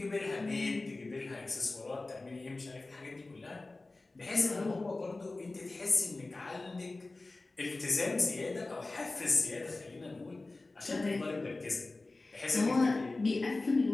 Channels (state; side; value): quieter; right; 3.2 dB